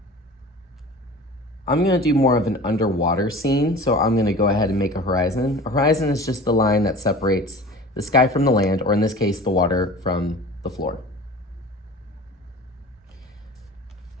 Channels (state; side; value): normal; both; correlation 0.39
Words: I'm gonna do more of an underwater scene, so I'm gonna go ahead and make a horizon. A horizon is just the line that separates the sky from the land, or in this case, the water from the floor.